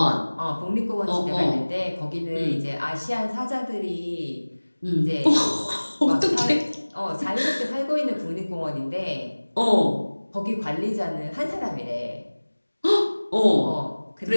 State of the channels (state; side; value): inverted; both; correlation -1.00